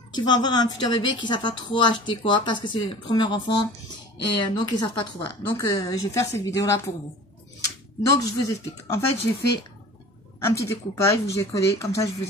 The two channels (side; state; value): both; normal; correlation 0.41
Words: qui vont avoir un futur bébé qui ne savent pas trop acheter quoi parce que c'est le premier enfant et donc ils ne savent pas trop. Voilà. Donc, je vais faire cette vidéo là pour vous. Donc je vous explique. En fait j'ai fait un petit découpage où j'ai collé. Comme ça je